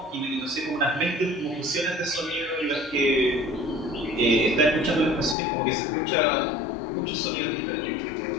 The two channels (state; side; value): drops out; right; at 5.4 s